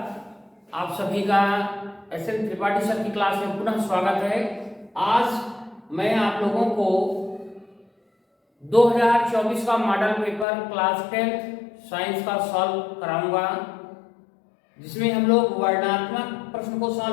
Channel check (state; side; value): drops out; right; at 10.5 s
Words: आप सभी का एस.एन. त्रिपाठी सर की क्लास में पुनः स्वागत है। आज मैं आप लोगों को 2024 का मॉडल पेपर क्लास 10 साइंस का सॉल्व कराऊंगा, जिसमें हम लोग वर्णनात्मक प्रश्न को